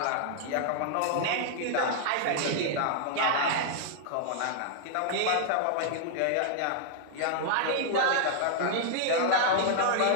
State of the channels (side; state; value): both; different; correlation -0.01